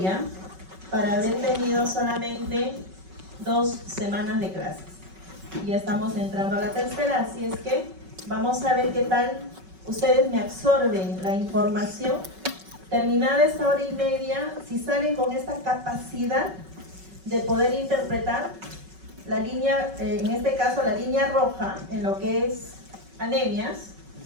historia para haber tenido solamente 2 semanas de clases. Ya estamos entrando a la tercera, así es que vamos a ver qué tal ustedes me absorben la información. Terminada esta hora y media, si salen con esta capacidad de poder interpretar la línea, en este caso la línea roja, en lo que es anemias,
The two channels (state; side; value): late; left; 5.3 ms